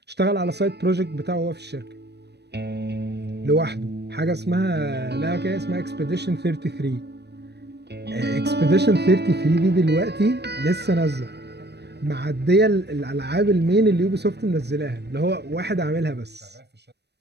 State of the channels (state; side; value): late; left; 0.49 ms